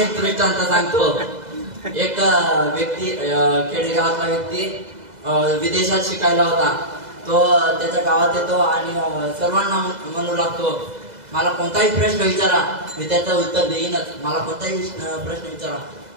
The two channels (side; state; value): left; late; 2.0 ms